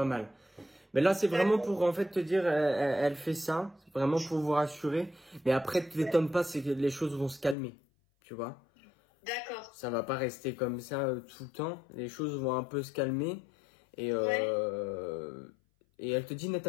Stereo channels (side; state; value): right; drops out; at 7.6 s